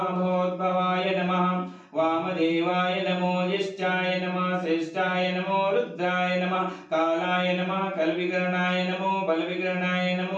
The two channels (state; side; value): identical; both; correlation 1.00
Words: नमः वामदेवाय नमो ज्येष्ठाय नमः श्रेष्ठाय नमो रुद्राय नमः कालाय नमः कलविकरणाय नमो बलविकरणाय